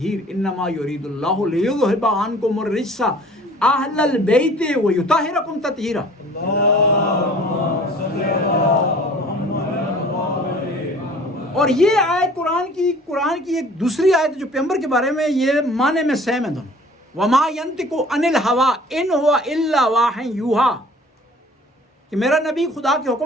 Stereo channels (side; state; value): both; normal; correlation 0.49